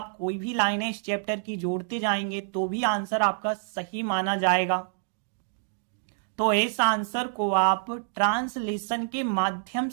कोई भी लाइनें इस चैप्टर की जोड़ते जाएंगे तो भी आंसर आपका सही माना जाएगा। तो इस आंसर को आप ट्रांसलेशन के माध्यम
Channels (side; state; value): left; silent; digital silence